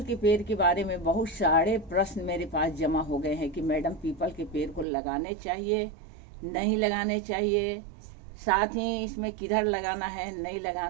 के पेड़ के बारे में बहुत सारे प्रश्न मेरे पास जमा हो गए हैं कि मैडम पीपल के पेड़ को लगाने चाहिए, नहीं लगाने चाहिए, साथ ही इसमें किधर लगाना है, नहीं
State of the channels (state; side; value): drops out; left; at 4.9 s